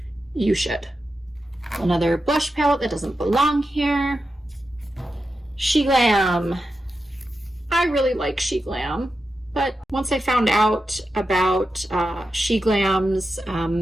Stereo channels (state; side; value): normal; both; correlation 0.89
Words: you should. Another blush palette that doesn't belong here. She Glam. I really like She Glam, but once I found out about She Glam's